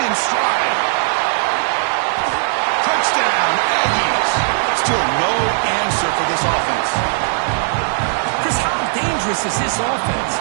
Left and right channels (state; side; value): silent; left; digital silence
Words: stride. Touchdown, Aggies. Still no answer for this offense. Chris, how dangerous is this offense?